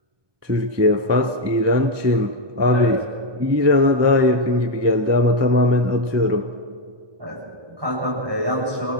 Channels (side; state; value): left; late; 1.2 ms